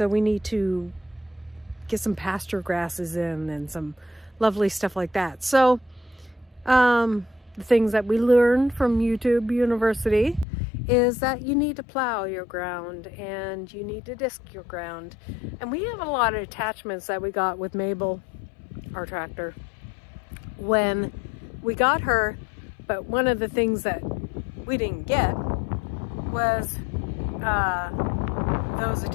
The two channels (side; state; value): right; drops out; at 10.5 s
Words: we need to get some pasture grasses in and some lovely stuff like that. So the things that we learned from YouTube University is that you need to plow your ground and you need to disc your ground. And we have a lot of attachments that we got with Mabel, our tractor, when we got her. But one of the things that we didn't get was those